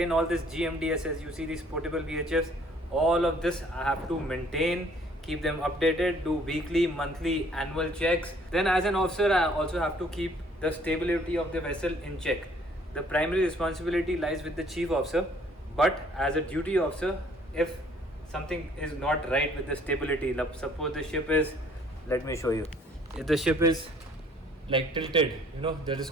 all this GMDSS. You see these portable VHFs, all of this I have to maintain, keep them updated, do weekly, monthly, annual checks. Then as an officer, I also have to keep the stability of the vessel in check. The primary responsibility lies with the chief officer, but as a duty officer, if something is not right with the stability, suppose the ship is, let me show you, if the ship is like tilted, you know, that is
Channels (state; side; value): normal; both; correlation 0.59